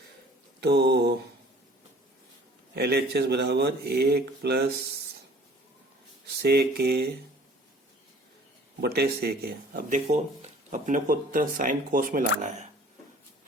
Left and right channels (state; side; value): normal; both; correlation 0.51